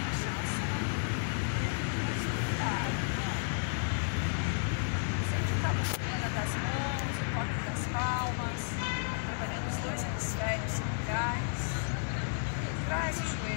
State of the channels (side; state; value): right; silent; digital silence